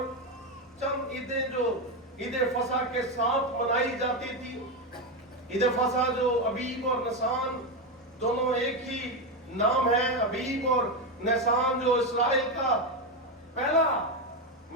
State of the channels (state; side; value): normal; both; correlation 0.10